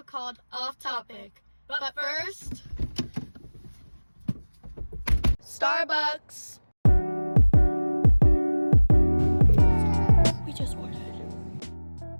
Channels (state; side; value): inverted; both; correlation -1.00